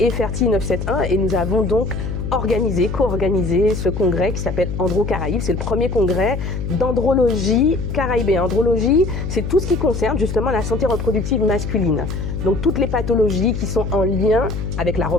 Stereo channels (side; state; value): left; noise; hum, 4 dB below the sound